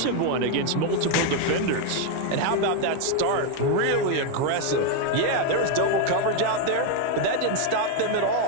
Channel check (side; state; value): both; different; correlation 0.01